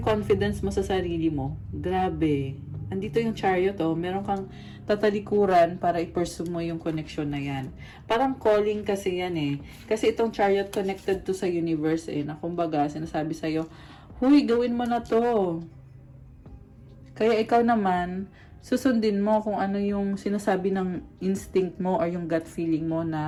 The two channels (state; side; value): identical; both; correlation 1.00